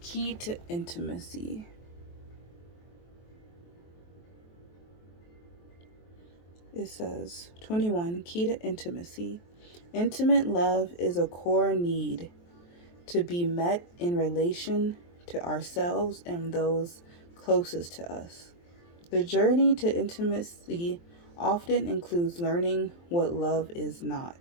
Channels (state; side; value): late; right; 23 ms